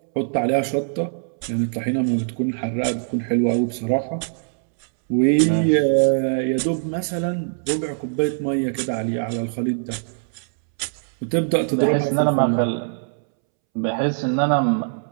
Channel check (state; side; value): silent; left; 64 dB below the other